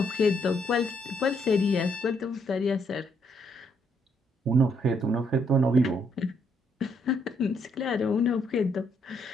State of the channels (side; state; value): both; normal; correlation 0.72